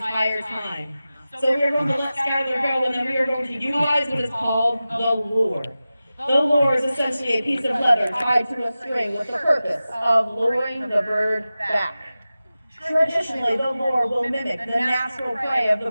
time. So we are going to let Skylar go, and then we are going to utilize what is called the lure. The lure is essentially a piece of leather tied to a string with the purpose of luring the bird back. Traditionally, the lure will mimic the natural prey of the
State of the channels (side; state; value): both; inverted; correlation -0.95